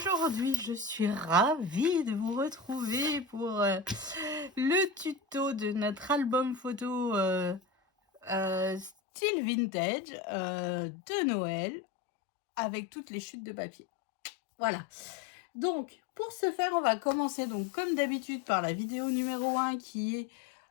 je suis ravie de vous retrouver pour le tuto de notre album photo style vintage de Noël avec toutes les chutes de papier. Voilà. Donc, pour ce faire, on va commencer donc comme d'habitude par la vidéo numéro 1 qui est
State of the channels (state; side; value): drops out; right; at 8.9 s